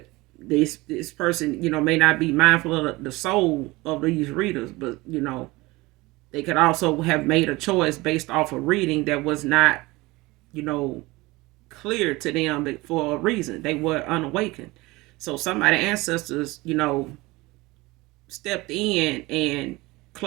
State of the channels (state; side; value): quieter; left; 21.6 dB